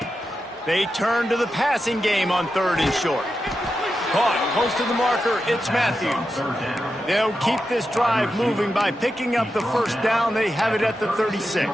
They turn to the passing game on 3rd and short. Caught close to the marker, it's Matthews. They'll keep this drive moving by picking up the 1st down. They have it at the 36.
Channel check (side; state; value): both; normal; correlation 0.89